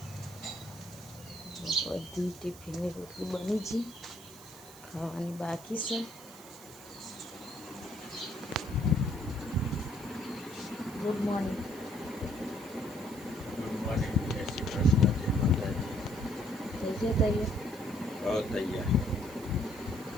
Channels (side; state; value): right; noise; hiss, 19 dB below the sound